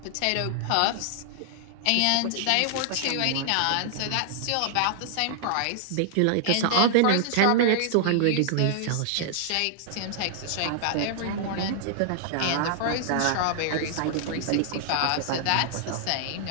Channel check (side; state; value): both; different; correlation -0.01